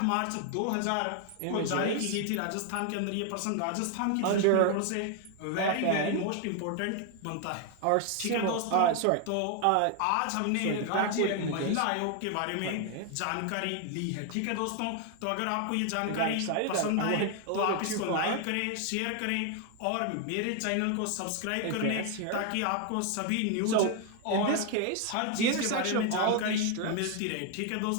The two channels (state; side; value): different; both; correlation 0.00